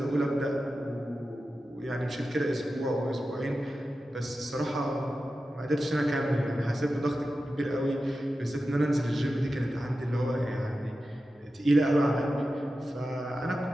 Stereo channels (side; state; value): both; normal; correlation 0.92